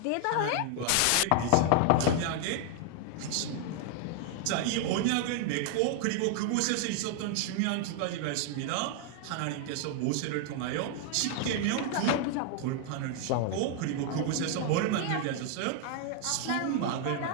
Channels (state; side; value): different; both; correlation 0.00